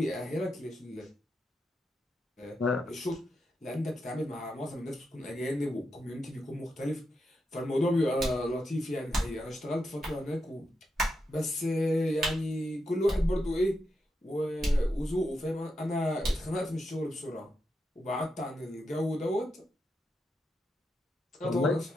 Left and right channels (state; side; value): normal; both; correlation 0.85